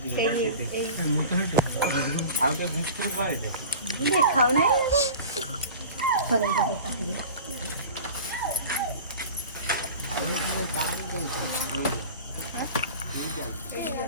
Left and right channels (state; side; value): inverted; both; correlation -0.37